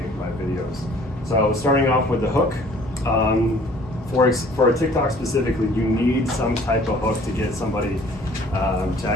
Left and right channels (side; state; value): both; normal; correlation 0.54